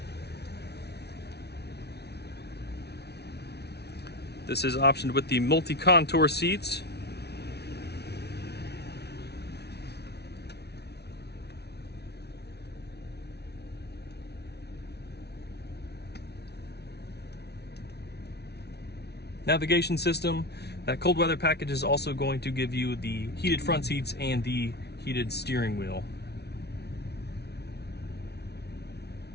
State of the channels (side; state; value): right; late; 0.49 ms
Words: This is optioned with the multi-contour seats. Navigation system. That cold weather package is also going to give you the heated front seats and the heated steering wheel.